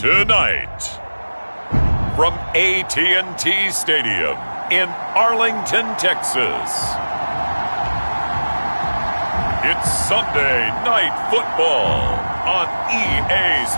Tonight, from AT&T Stadium in Arlington, Texas, it's Sunday Night Football on EA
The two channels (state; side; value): inverted; both; correlation -1.00